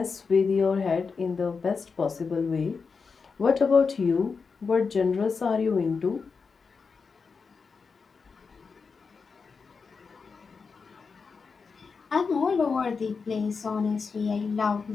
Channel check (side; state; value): right; quieter; 5.1 dB